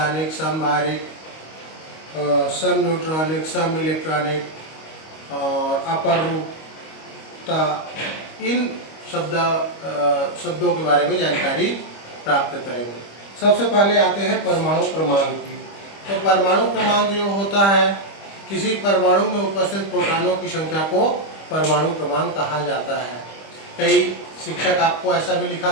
समभारिक, सम न्यूट्रॉनिक, सम इलेक्ट्रॉनिक और अपरूपता, इन शब्दों के बारे में जानकारी प्राप्त करेंगे। सबसे पहले आते हैं परमाणु क्रमांक की। तो परमाणु क्रमांक जो होता है, किसी परमाणु में उपस्थित प्रोटॉनों की संख्या को परमाणु क्रमांक कहा जाता है। कई शिक्षक आपको ऐसा भी लिखा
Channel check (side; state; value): right; late; 25 ms